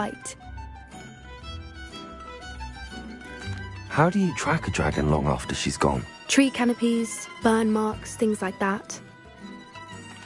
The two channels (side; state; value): both; identical; correlation 1.00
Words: How do you track a dragon long after she's gone? Tree canopies, burn marks, things like that.